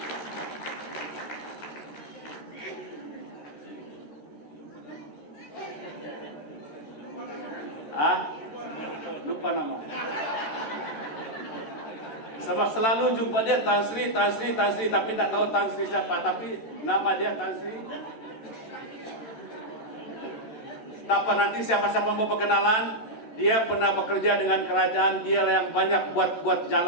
Lupa nama. Sebab selalu jumpa dia Tan Sri, tapi tak tahu Tan Sri siapa. Tapi Nama dia Tan Sri. Tanpa nanti siapa-siapa mau perkenalan, dia pernah bekerja dengan kerajaan, dia yang banyak buat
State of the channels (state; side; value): late; right; 14 ms